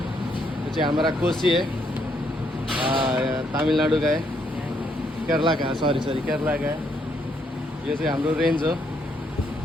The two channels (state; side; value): normal; both; correlation 0.73